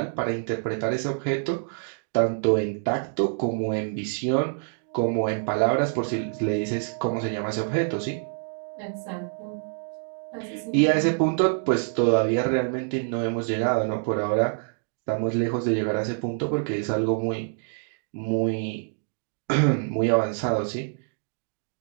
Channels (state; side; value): silent; left; digital silence